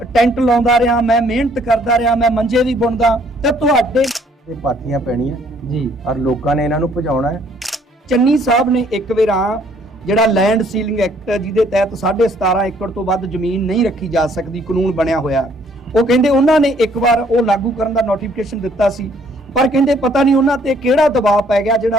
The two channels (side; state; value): both; normal; correlation 0.63